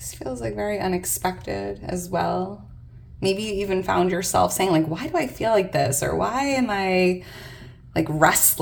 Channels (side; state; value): both; identical; correlation 1.00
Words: feels like very unexpected as well. Maybe you even found yourself saying like, why do I feel like this? Or why am I like